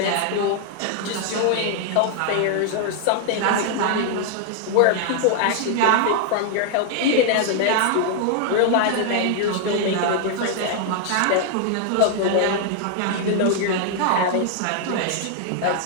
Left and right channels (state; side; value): different; both; correlation 0.00